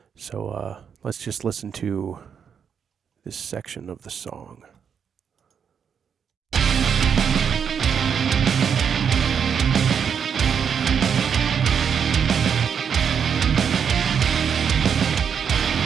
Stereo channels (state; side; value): quieter; left; 7.3 dB